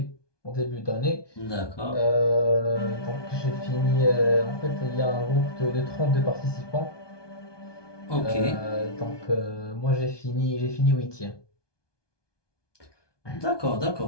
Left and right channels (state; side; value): late; right; 1.2 ms